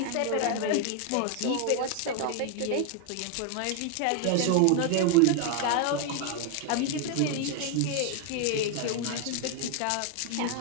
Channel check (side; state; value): both; different; correlation 0.01